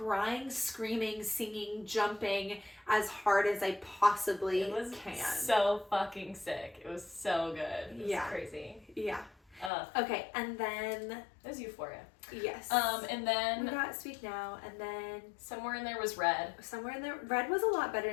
screaming, singing, jumping as hard as I possibly can. So fucking sick. It was so good. It was crazy. Yeah. Okay, and then there's Euphoria. Yes. And then we got Speak Now, and then somewhere in there was Red. Somewhere in there, Red was a lot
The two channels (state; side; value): drops out; right; at 9.7 s